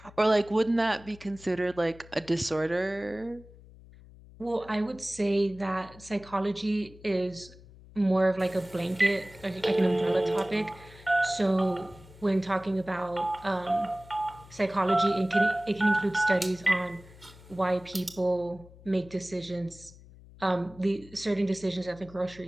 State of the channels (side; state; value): left; noise; hum, 21 dB below the sound